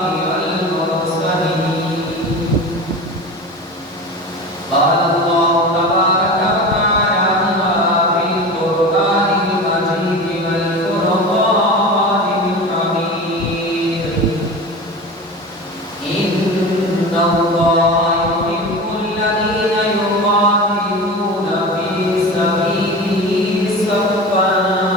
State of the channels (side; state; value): both; normal; correlation 0.31